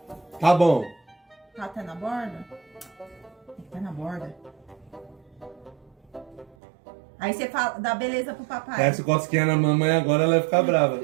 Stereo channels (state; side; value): drops out; left; at 6.6 s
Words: Tá bom. Tá até na borda? Tem que estar na borda. Aí você fala, dá beleza pro papai. Essa cosquinha na mamãe agora, ela vai ficar brava.